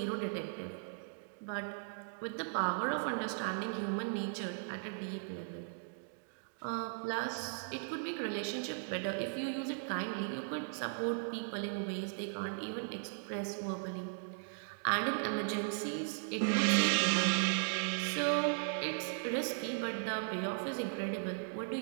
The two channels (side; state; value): left; silent; digital silence